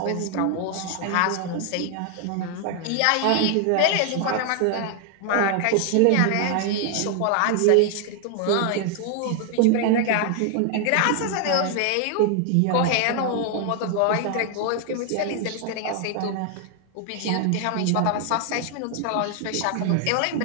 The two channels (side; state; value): both; different; correlation 0.00